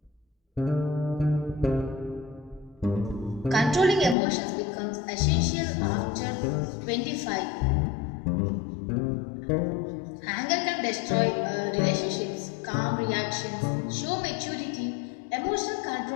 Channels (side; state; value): right; drops out; at 4.2 s